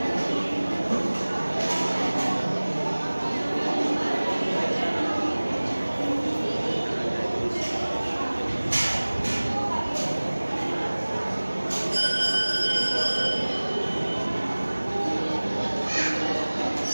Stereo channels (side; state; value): both; inverted; correlation -1.00